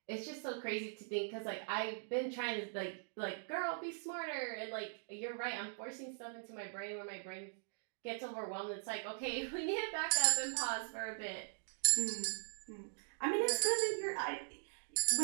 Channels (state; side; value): silent; left; digital silence